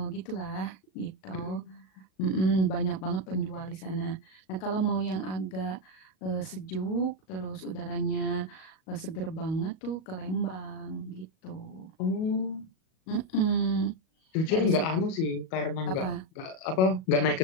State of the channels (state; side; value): late; right; 37 ms